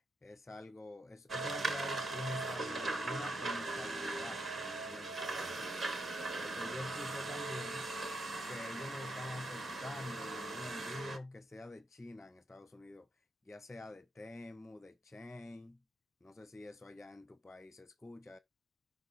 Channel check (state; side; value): normal; both; correlation 0.80